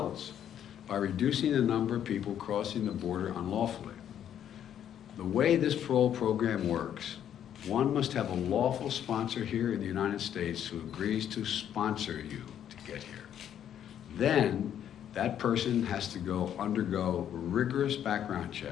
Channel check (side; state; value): right; quieter; 9.9 dB